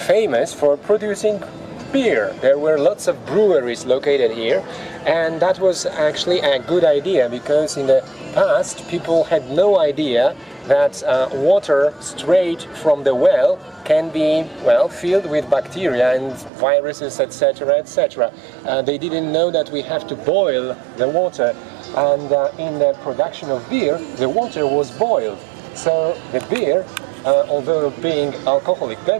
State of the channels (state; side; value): drops out; left; at 16.5 s